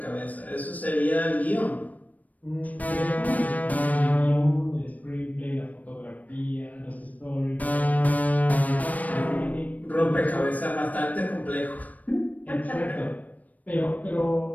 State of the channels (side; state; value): right; late; 0.074 ms